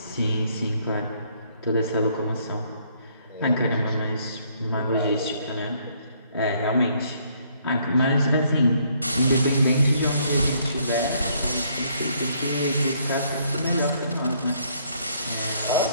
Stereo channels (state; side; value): inverted; both; correlation -0.67